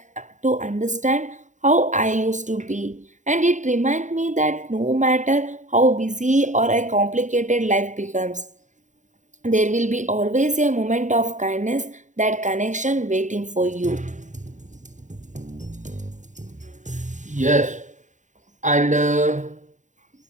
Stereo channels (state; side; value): late; left; 0.36 ms